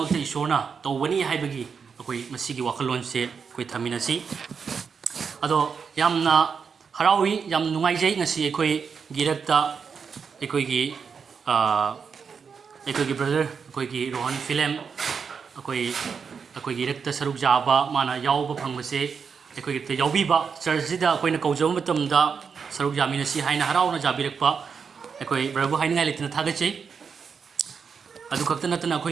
isona tawani haibagi akoi masigi wakalon se koi thamina si ado yamna harawi yam nungaijai ngasi ekoi girakta ekoi gi brother ekoi gi Rohan film akoi girakta saruk jaba mana yauba phangmase ekoi gi yaubi ba church da akoi na kaujam matamda saruk jamina si haina harawna jabirakpa ekoi brabu haina ngai litina thagachei adu khakta natana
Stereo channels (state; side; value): quieter; left; 6.0 dB